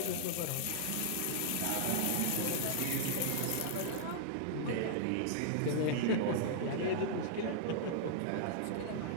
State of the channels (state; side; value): different; both; correlation -0.01